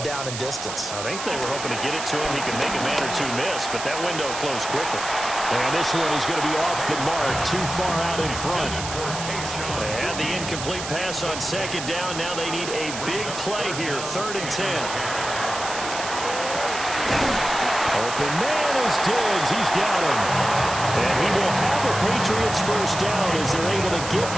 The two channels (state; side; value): noise; right; hiss, 7 dB below the sound